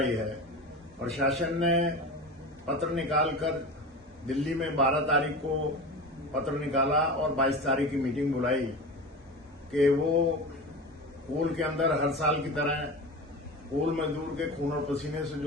है। प्रशासन ने पत्र निकालकर दिल्ली में 12 तारीख को पत्र निकाला और 22 तारीख की मीटिंग बुलाई कि वो कोल के अंदर हर साल की तरह कोल मजदूर के खून और पसीने से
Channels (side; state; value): both; normal; correlation 0.30